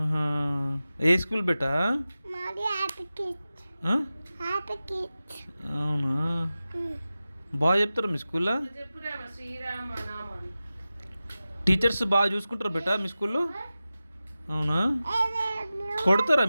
ఏ స్కూల్ బేటా? అవునా? బాగా చెప్తారా మీ స్కూల్లో? టీచర్స్ బాగా చూసుకుంటారా బేటా మీ స్కూల్లో? అవునా? కొడతారా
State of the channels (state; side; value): inverted; both; correlation -0.95